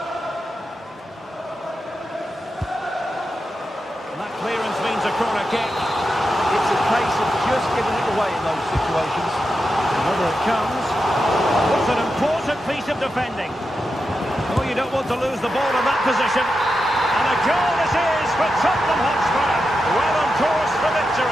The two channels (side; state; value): both; normal; correlation 0.88